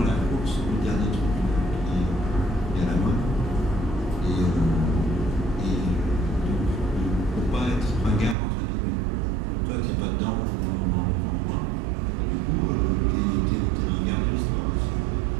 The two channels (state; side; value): drops out; left; at 8.3 s